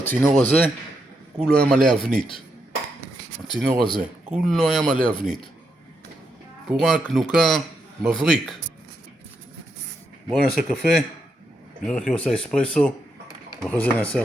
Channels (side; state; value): both; normal; correlation 0.81